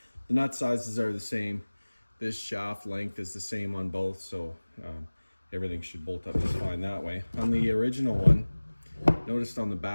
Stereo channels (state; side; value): inverted; both; correlation -1.00